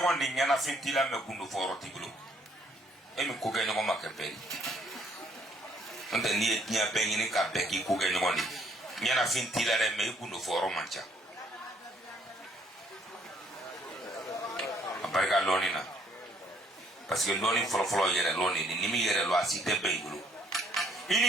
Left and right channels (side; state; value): both; normal; correlation 0.66